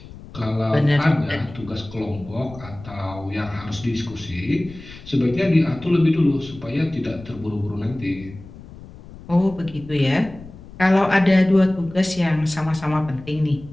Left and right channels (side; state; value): left; noise; rumble, 17 dB below the sound